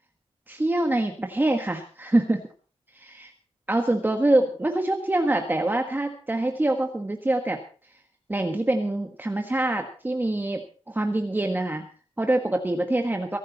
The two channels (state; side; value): normal; both; correlation 0.93